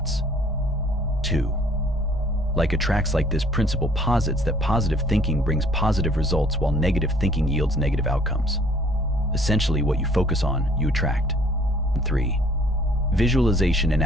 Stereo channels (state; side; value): normal; both; correlation 0.58